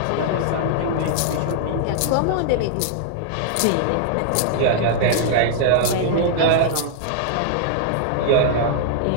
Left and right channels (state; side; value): different; both; correlation -0.01